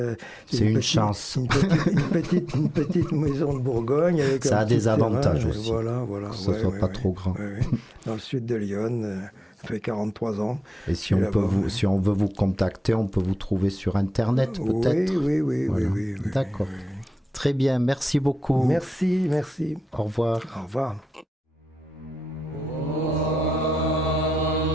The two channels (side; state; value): both; normal; correlation 0.92